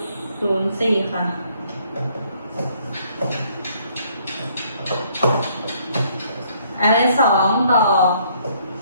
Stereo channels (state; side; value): inverted; both; correlation -0.65